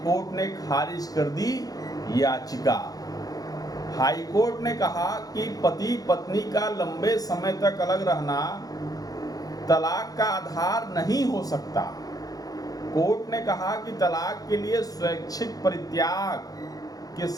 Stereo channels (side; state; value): right; late; 0.18 ms